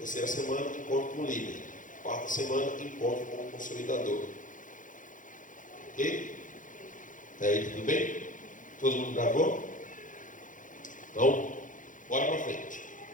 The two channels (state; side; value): late; right; 0.38 ms